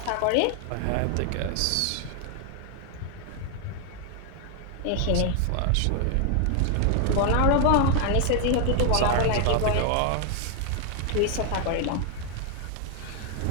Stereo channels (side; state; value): both; different; correlation 0.01